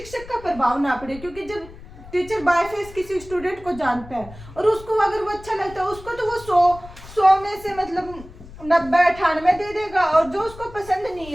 का प्रभाव ना पड़े। क्योंकि जब टीचर बाय फेस किसी स्टूडेंट को जानता है और उसको अगर वो अच्छा लगता है, उसको तो वो 100 में से मतलब 90-98 दे देगा, और जो उसको पसंद नहीं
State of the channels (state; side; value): noise; left; rumble, 17 dB below the sound